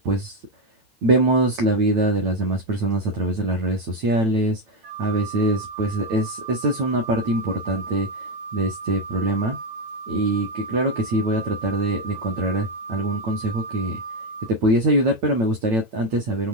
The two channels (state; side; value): late; left; 9.0 ms